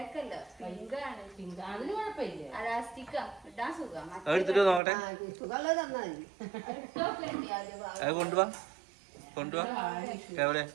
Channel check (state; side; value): drops out; left; at 4.8 s